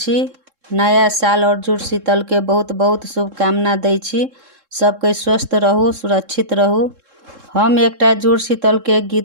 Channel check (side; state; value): left; late; 3.7 ms